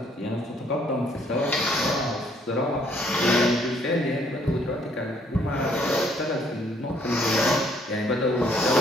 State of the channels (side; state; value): both; normal; correlation 0.65